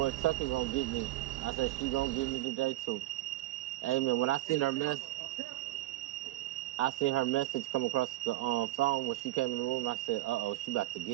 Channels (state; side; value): quieter; left; 16.8 dB